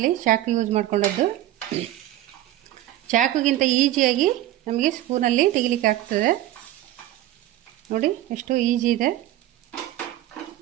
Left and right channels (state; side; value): quieter; left; 14.2 dB